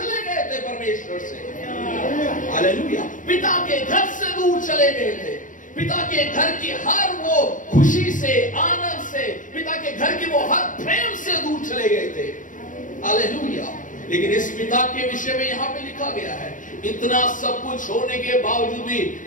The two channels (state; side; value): late; right; 0.38 ms